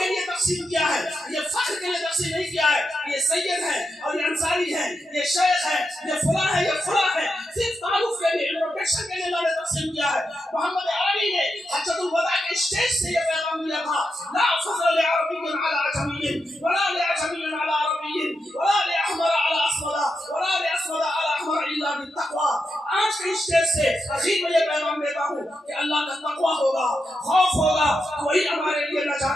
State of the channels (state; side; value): normal; both; correlation 0.86